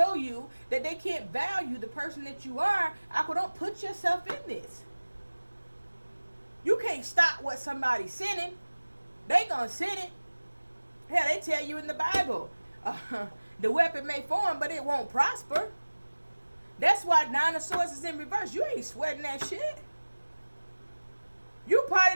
you that they can't value the person that you are, don't put yourself in this. You can't stop what somebody's sending. They gonna send it. Hell, they tell you in the Bible, the weapon may form, but it won't prosper. That's why 9 of Swords is in reverse. You ain't sweating that shit. You probably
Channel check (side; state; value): both; inverted; correlation -1.00